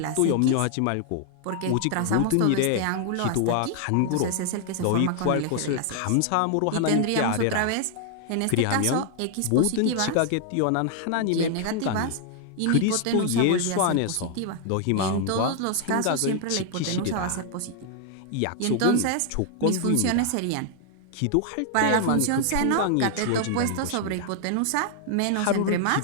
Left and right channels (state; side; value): different; both; correlation 0.00